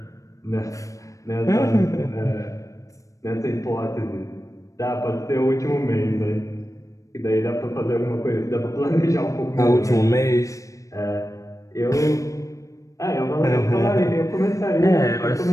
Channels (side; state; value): right; late; 0.16 ms